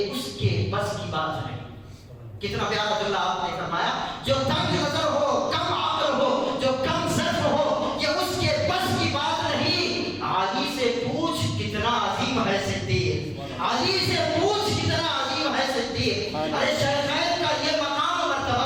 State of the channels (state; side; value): identical; both; correlation 1.00